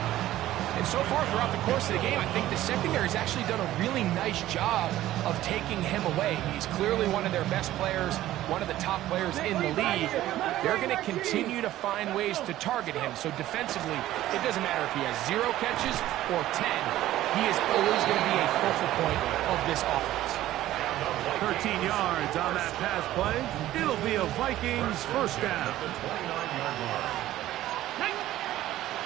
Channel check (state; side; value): quieter; left; 14.4 dB